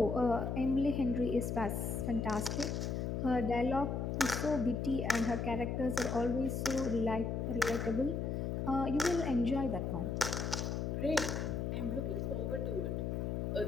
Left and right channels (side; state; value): left; noise; hum, 1 dB below the sound